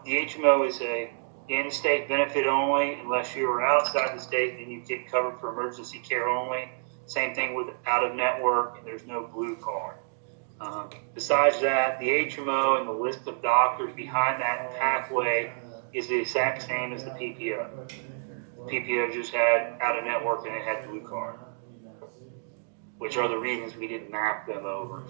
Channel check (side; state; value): left; silent; digital silence